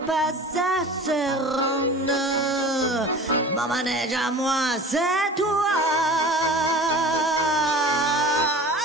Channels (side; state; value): both; normal; correlation 0.38